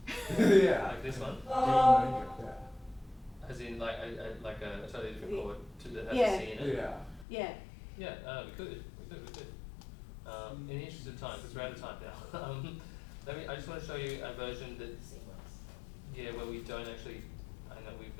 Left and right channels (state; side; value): drops out; right; at 7.2 s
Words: Yeah. Like this one? D major. Yeah. As in like a totally different chord to that has Yeah. a C in it? Yeah. Yeah. Yeah, we could. In the interest of time, because we're out of time now, I just want to show you a version that, yeah, where we don't actually, I know we're